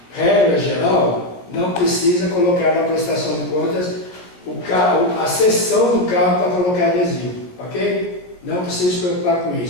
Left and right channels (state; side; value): late; right; 16 ms